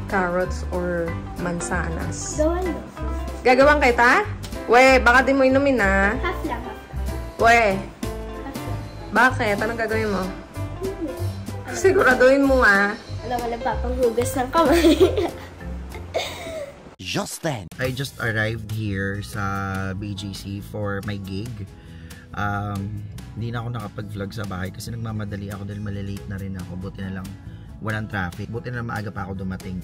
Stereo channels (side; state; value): both; identical; correlation 1.00